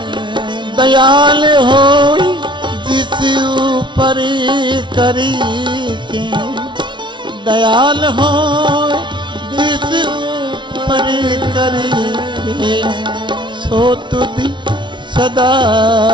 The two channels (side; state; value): left; late; 0.23 ms